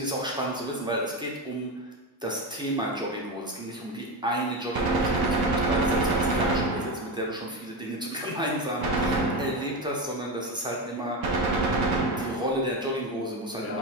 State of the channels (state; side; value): normal; both; correlation 0.17